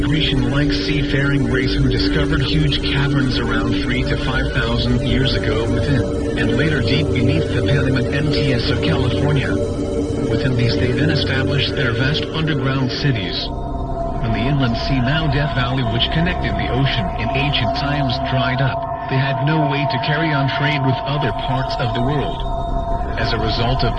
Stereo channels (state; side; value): identical; both; correlation 1.00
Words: Grecian-like seafaring race who discovered huge caverns around 3,000 to 5,000 years ago within, and later deep beneath the Paleolithic MTS of California. Within these they then established their vast underground cities. When the inland sea, now Death Valley, which connected the ocean in ancient times, dried up, they had no way to carry on trade with other parts of the world. As a result of